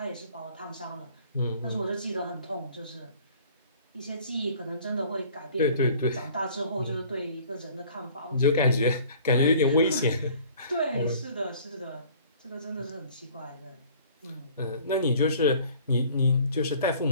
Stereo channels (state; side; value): inverted; both; correlation -0.51